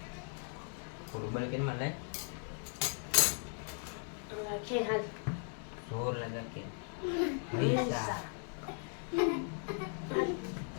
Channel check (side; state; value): right; silent; 53 dB below the other